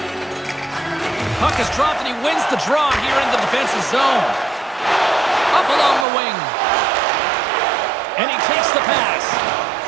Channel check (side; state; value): left; drops out; at 6.1 s